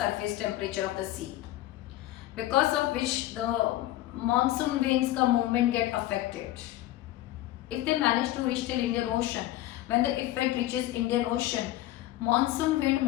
temperature of the sea. Because of which the monsoon winds ka movement get affected. If they manage to reach till Indian Ocean, when the effect reaches Indian Ocean, monsoon wind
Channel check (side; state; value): right; quieter; 15.1 dB